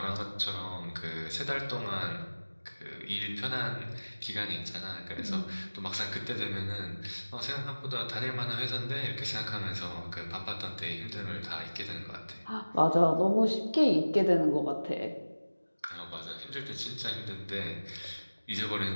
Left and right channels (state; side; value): inverted; both; correlation -1.00